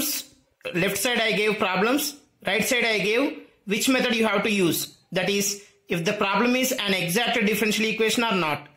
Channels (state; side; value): identical; both; correlation 1.00